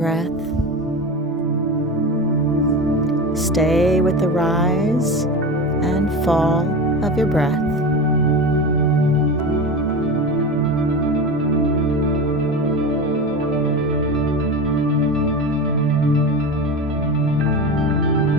Stay with the rise and fall of your breath.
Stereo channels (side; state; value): both; normal; correlation 0.26